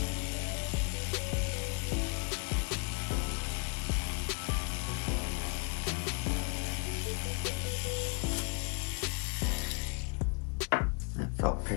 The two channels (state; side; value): quieter; right; 35.0 dB